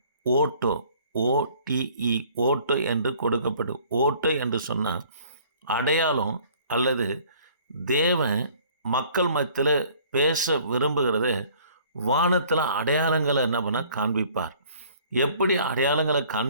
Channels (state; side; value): inverted; both; correlation -0.55